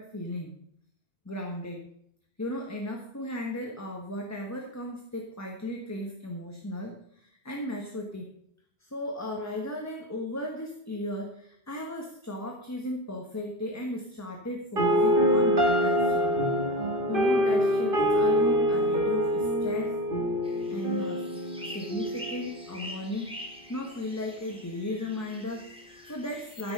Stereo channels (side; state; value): both; normal; correlation 0.23